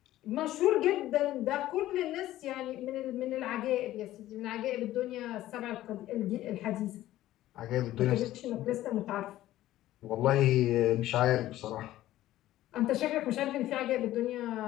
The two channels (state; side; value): quieter; right; 14.6 dB